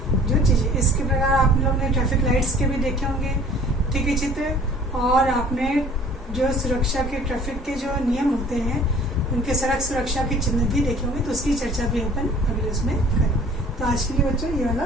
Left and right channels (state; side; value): normal; both; correlation 0.50